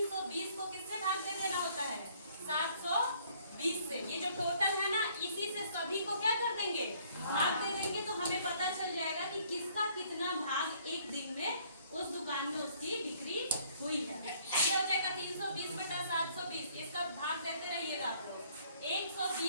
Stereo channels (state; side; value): inverted; both; correlation -0.62